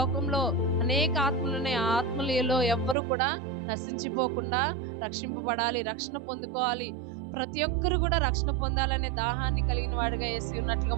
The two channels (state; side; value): drops out; left; at 3.0 s